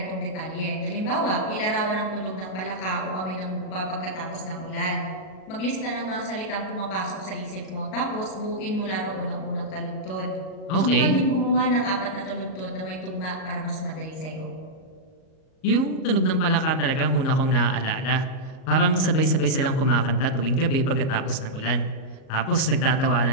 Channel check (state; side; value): late; right; 38 ms